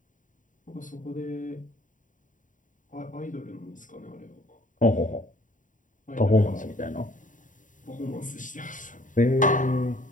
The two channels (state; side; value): late; right; 0.38 ms